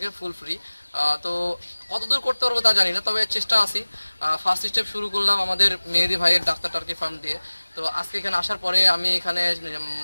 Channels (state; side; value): inverted; both; correlation -1.00